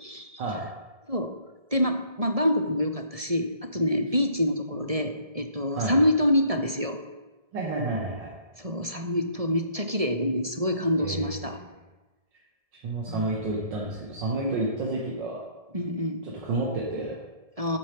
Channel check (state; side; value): late; left; 1.7 ms